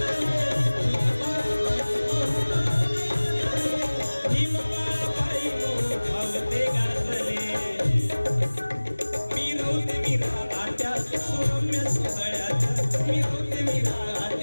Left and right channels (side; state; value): both; inverted; correlation -1.00